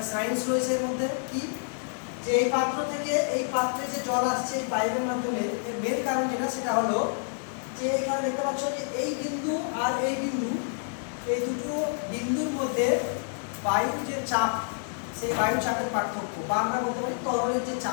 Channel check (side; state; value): right; silent; 59 dB below the other